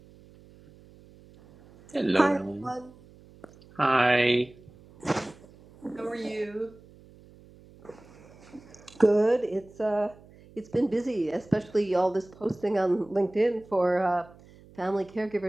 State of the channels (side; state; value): right; noise; hum, 24 dB below the sound